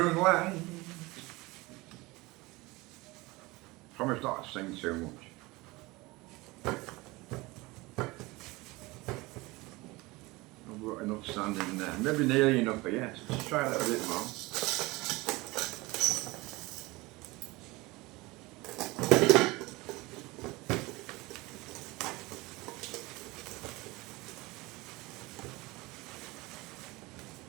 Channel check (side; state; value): left; quieter; 22.3 dB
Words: Promise not to sing too much. I've got enough sand in there. Maybe nearly enough, but yes. Let's try a little bit more.